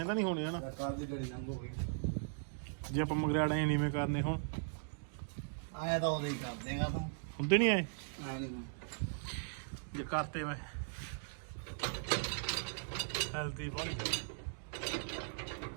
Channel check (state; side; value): silent; left; digital silence